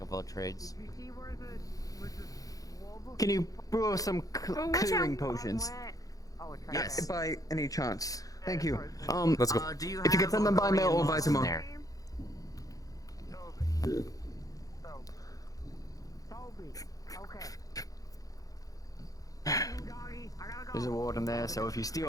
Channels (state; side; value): late; right; 0.17 ms